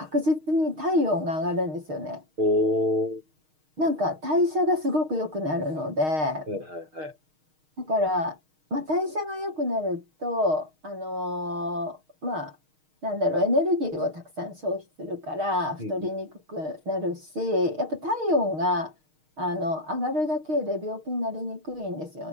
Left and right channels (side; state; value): left; late; 6.4 ms